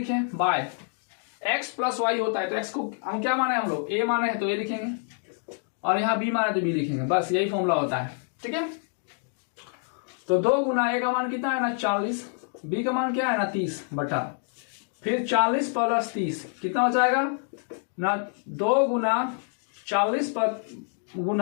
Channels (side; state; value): right; silent; 56 dB below the other